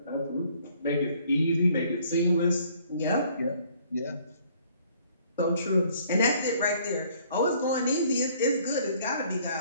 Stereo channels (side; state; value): both; inverted; correlation -0.61